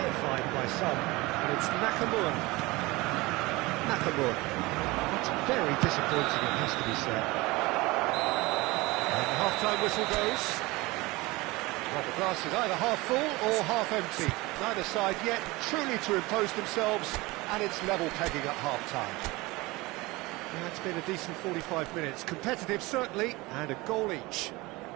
by some, and it's Nakamura. Nakamura. That's very disappointing, it has to be said. And the half-time whistle goes. Well, the glass is either half full or half empty. Neither side yet truly to impose themselves, and it's level pegging at half-time. Yeah, it's been a decent 45 minutes. Competitive, certainly, and a goal each.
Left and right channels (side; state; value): left; quieter; 22.1 dB